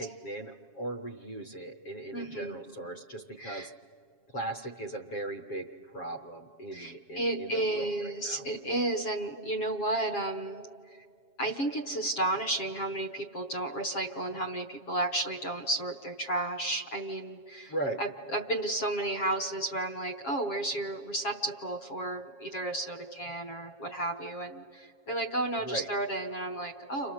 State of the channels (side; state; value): right; late; 7.3 ms